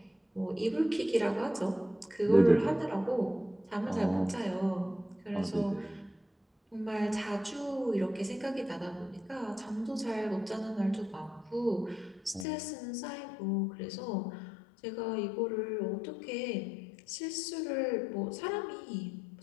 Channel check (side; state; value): right; drops out; at 12.5 s